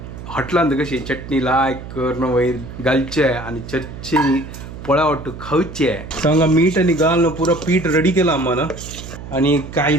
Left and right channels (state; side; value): noise; right; hum, 12 dB below the sound